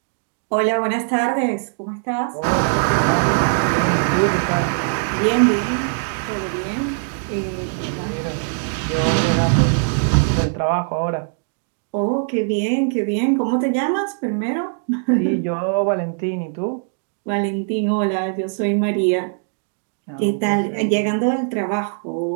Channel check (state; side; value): silent; left; digital silence